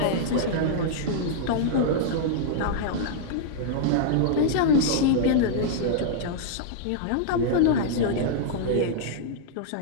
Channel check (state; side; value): different; both; correlation -0.02